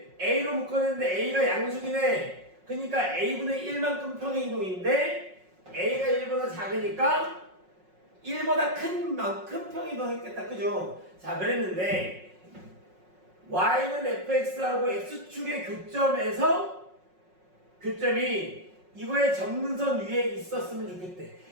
A로 묶었는데 A가 양수긴 해. 그러니까 A분의 1만큼 평행이동인데 A가 1보다 작으니까 1보다 큰 만큼 평행이동했겠다. 그죠? 자, 그랬는데 Y는 fx하고 x축의 교점이 이거의 점근선 위에 있었으면 좋겠대.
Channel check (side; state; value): left; late; 5.4 ms